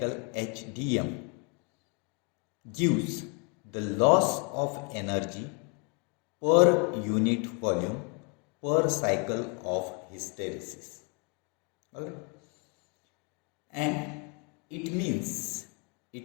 H dm gives the loss of energy per unit volume per cycle of hysteresis. Alright. And it means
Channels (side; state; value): right; quieter; 35.1 dB